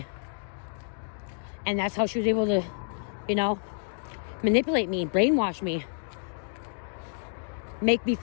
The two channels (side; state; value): right; silent; digital silence